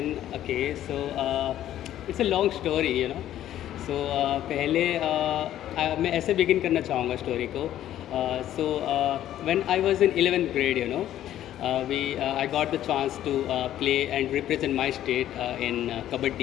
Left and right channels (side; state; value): right; quieter; 12.2 dB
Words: okay. So it's a long story. So पहले मैं ऐसे begin करना चाहूँगा story को. So when I was in 11th grade, I got the chance to play and represent my state in